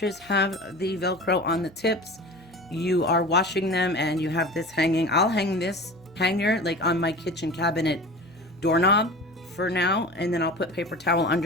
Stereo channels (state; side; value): noise; left; hum, 28 dB below the sound